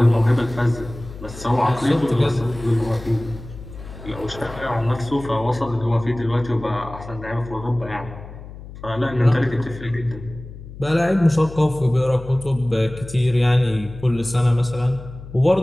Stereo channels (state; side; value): noise; left; hum, 14 dB below the sound